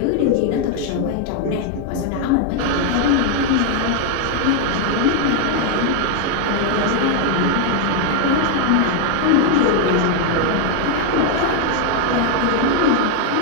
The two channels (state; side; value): different; both; correlation 0.01